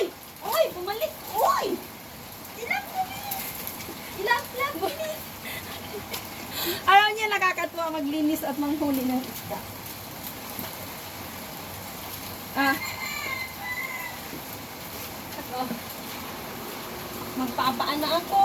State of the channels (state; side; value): identical; both; correlation 1.00